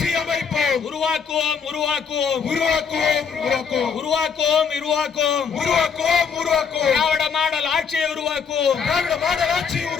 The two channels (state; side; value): quieter; right; 6.3 dB